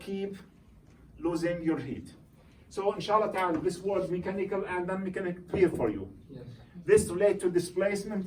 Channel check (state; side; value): identical; both; correlation 1.00